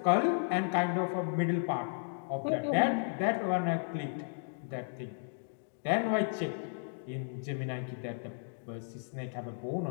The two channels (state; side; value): silent; right; digital silence